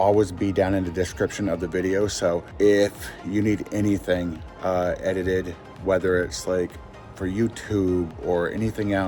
be down in the description of the video, so if you need anything edited, whether it's like for YouTube or anything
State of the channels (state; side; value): identical; both; correlation 1.00